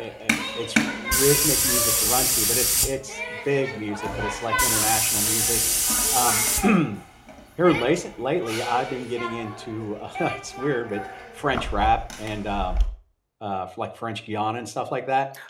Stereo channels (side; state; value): both; identical; correlation 1.00